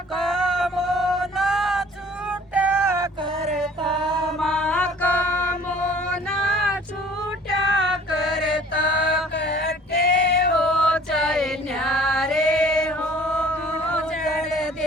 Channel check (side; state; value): both; normal; correlation 0.51